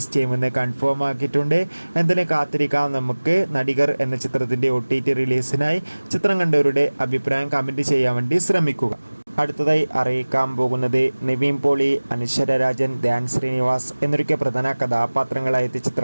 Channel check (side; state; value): both; inverted; correlation -1.00